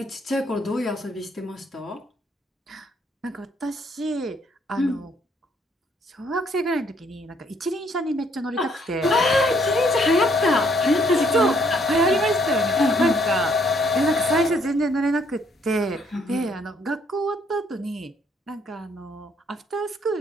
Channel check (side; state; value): both; normal; correlation 0.67